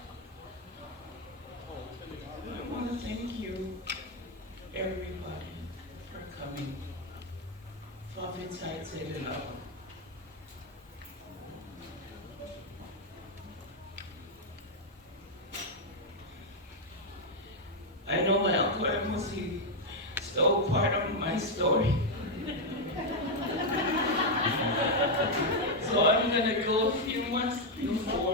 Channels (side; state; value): both; normal; correlation 0.01